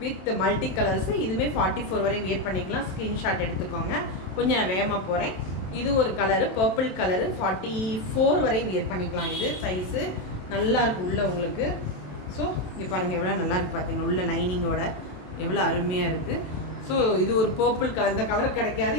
வித் மல்டி கலர்ஸு. இதுவுமே 44 வரை வியர் பண்ணிக்கலாம். ஸ்க்ரீன்ஷாட் எடுத்துக்கோங்க. கொஞ்சம் நான் வேகமாக போகிறேன். இது ஒரு கலரு, பர்பிள் கலரு, 44 வரை வியர் பண்ணிக்கலாம். இது சைஸு நல்லாயிருக்கு உள்ள உங்களுக்கு. ஸோ இங்கே பாருங்கள் எவ்வளோ நல்லாயிருக்கு பார்த்தீங்க, உள்ள லைனிங்கோட எவ்வளோ அருமையாக இருக்குது. ஸோ இது ஒரு பர்பிள் கலர். இந்த கலர் கிடைக்காது,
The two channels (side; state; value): right; late; 27 ms